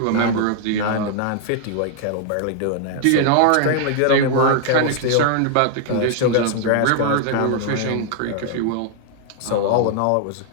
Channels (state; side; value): different; both; correlation 0.00